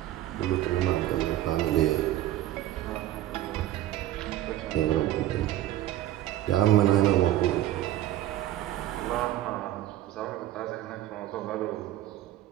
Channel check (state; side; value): quieter; left; 13.9 dB